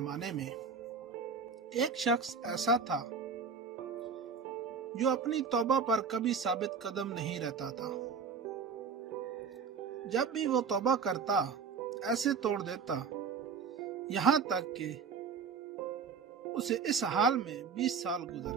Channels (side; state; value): left; quieter; 5.8 dB